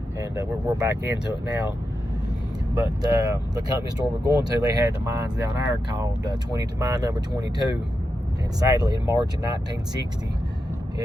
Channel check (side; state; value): both; normal; correlation 0.88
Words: And we're back into it now. But the company store we're going to, they had the mines down there called mine number 22. And sadly, in March of 1960,